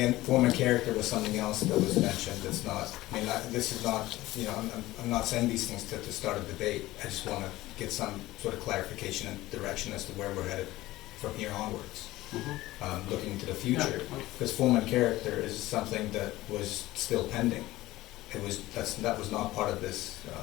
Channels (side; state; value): right; quieter; 17.4 dB